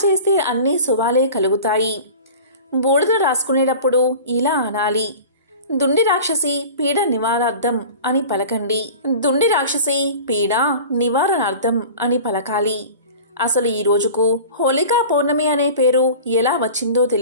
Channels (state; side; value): inverted; both; correlation -0.38